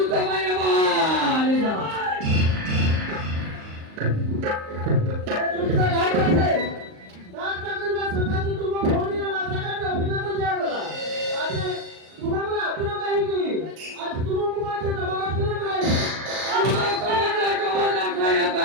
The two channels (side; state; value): left; late; 38 ms